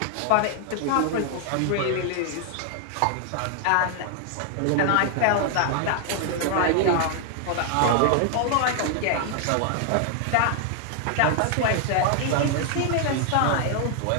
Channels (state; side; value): different; both; correlation 0.00